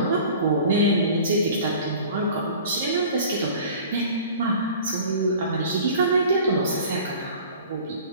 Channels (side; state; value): both; inverted; correlation -0.44